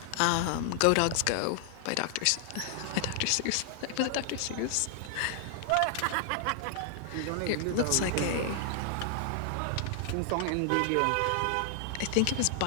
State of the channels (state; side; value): different; both; correlation 0.00